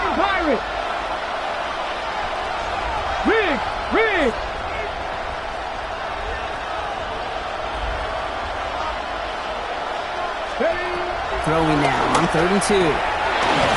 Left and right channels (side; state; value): both; identical; correlation 1.00